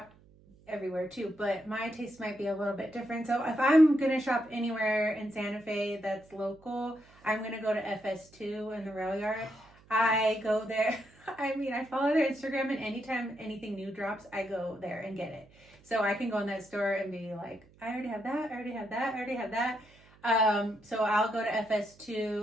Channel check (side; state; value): right; noise; hum, 27 dB below the sound